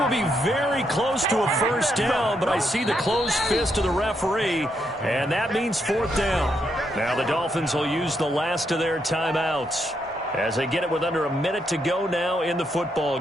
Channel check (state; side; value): normal; both; correlation 0.79